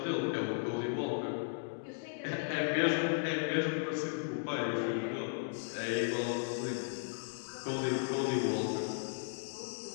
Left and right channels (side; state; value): right; silent; digital silence